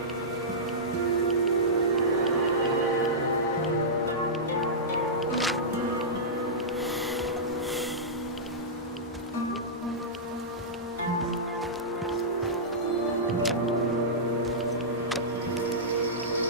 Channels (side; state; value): both; normal; correlation -0.15